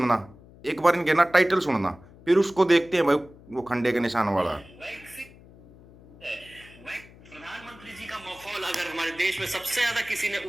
एक बार इनके ना टाइटल सुनना, फिर उसको देखते हैं भाई वो खंडे के निशान वाला। प्रधानमंत्री जी का मखौल अगर हमारे देश में सबसे ज्यादा किसी ने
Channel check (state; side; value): noise; left; hum, 22 dB below the sound